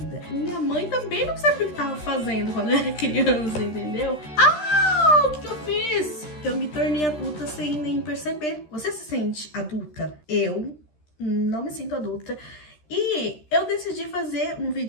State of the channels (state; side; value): late; right; 13 ms